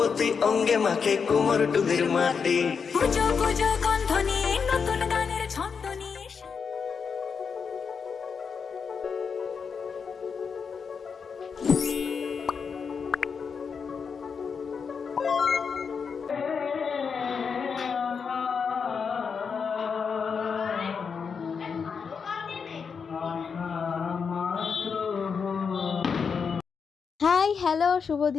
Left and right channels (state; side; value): quieter; right; 6.0 dB